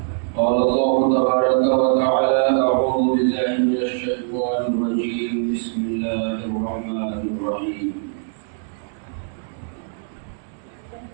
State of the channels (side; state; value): left; silent; digital silence